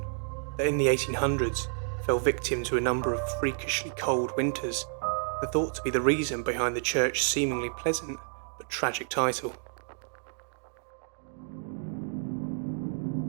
that in the 1800s fell victim to a number of freakishly cold winters, and thought to be the reason behind the church's seemingly pleasant but tragic title.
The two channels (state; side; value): silent; left; digital silence